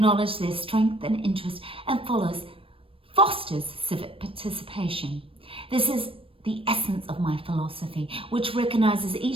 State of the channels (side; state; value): left; late; 0.26 ms